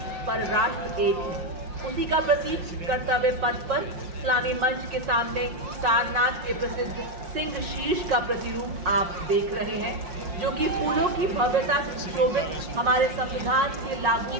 पर राष्ट्र एक है। उसी का प्रतीक कर्तव्य पथ पर इस्लामी मंच के सामने सारनाथ के प्रसिद्ध सिंह शीर्ष का प्रतिरूप आप देख रहे हैं, जो कि फूलों की भव्यता से सुशोभित हमारे संविधान के लागू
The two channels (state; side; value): late; left; 5.6 ms